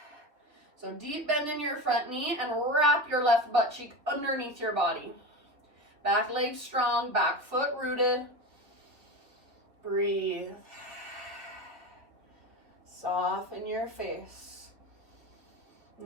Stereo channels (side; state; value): left; late; 3.2 ms